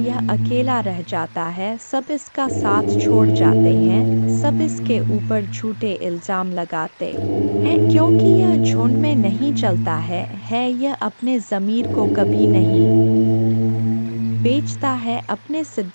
यह अकेला रह जाता है, सब इसका साथ छोड़ जाते हैं, सब इसके ऊपर झूठे इल्जाम लगाते हैं, क्योंकि यह झुंड में नहीं चलता है यह अपने ज़मीर को कभी नहीं बेचता है, अपने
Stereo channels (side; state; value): both; inverted; correlation -1.00